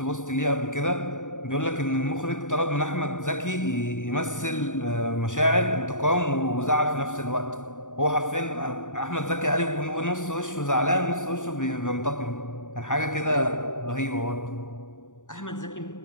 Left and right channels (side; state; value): right; late; 0.86 ms